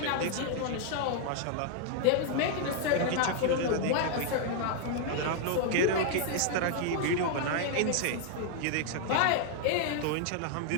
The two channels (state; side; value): different; both; correlation 0.00